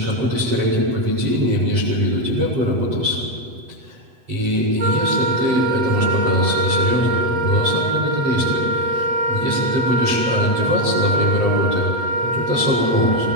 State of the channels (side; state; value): left; late; 8.1 ms